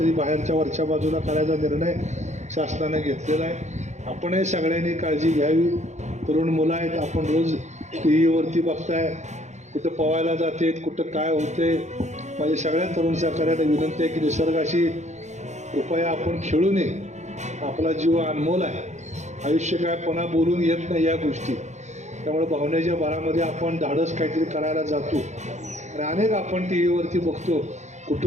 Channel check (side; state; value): left; late; 0.34 ms